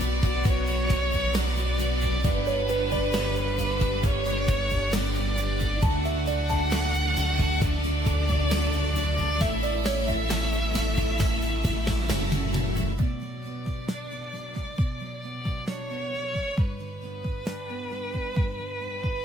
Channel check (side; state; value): both; normal; correlation 0.70